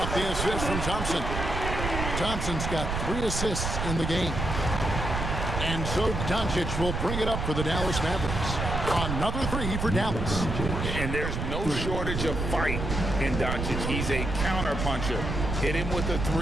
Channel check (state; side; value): noise; right; rumble, 3 dB below the sound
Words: the assist from Thompson. Thompson's got 3 assists in the game. And so Doncic will bring it up for the Dallas Mavericks. Another 3 for Dallas. And there's no shortage of fight in Doncic. He's a counter-puncher. Hit him with a